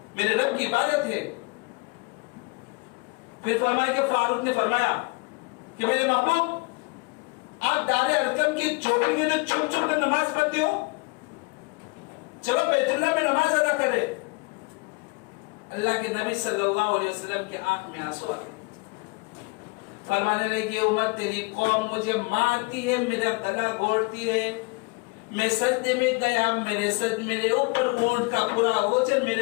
मेरे रब की इबादत है। फिर फरमाया कि फारूक ने फरमाया कि मेरे महबूब, आप दारे अरकम की चौकी के अंदर छुप छुप कर नमाज पढ़ते हो, चलो बैतुल्लाह में नमाज अदा करे। अल्लाह के नबी सल्लल्लाहु अलैहि वसल्लम की आंख में आंसू आ गए। फरमाने लगे, उम्मत तेरी कौम मुझे मारती है, मेरा गला घोटती है, मैं सजदे में गया, मेरे ऊपर ऊंट का पूरा ओजन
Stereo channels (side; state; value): right; quieter; 28.6 dB